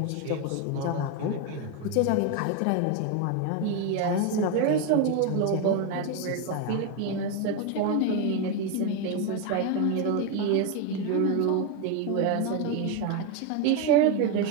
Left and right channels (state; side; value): different; both; correlation 0.02